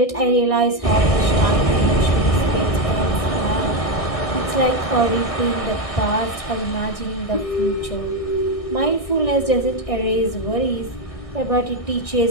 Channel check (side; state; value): right; late; 1.6 ms